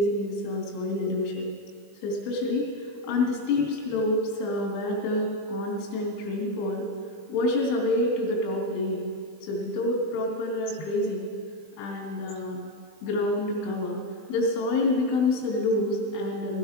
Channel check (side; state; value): right; late; 20 ms